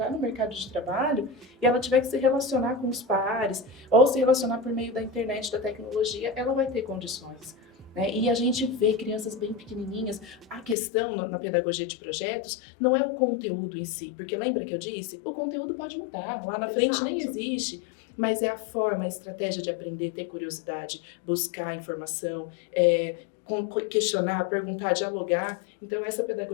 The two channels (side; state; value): right; drops out; at 10.8 s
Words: no mercado de trabalho e ela tiver que se relacionar com os pares ou se relacionar por meio da internet, da tecnologia, ela vai ter condições. né? E a gente vê crianças bem pequenininhas. A questão na pedagogia de projetos não é o conteúdo em si, porque lembra que eu disse? O conteúdo pode mudar, lá na frente nem existe. Mas é a forma, a estratégia de aprender, ter curiosidade, buscar informação, questionar, perguntar, dialogar. Então, essa